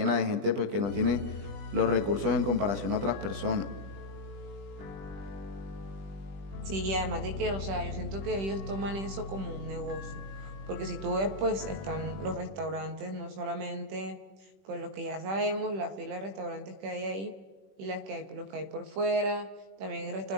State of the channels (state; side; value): late; left; 21 ms